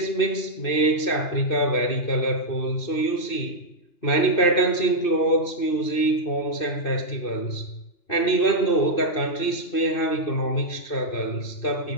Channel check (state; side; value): late; right; 2.9 ms